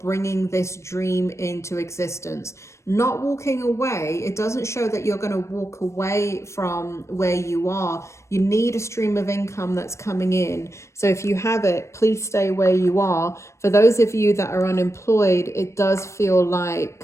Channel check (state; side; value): late; right; 0.14 ms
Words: this dream into existence. Not walking away. It doesn't show that you're going to walk away from where you are. You need a stream of income that's coming in. So if you have it, please stay where you are. For those of you that are unemployed, it does feel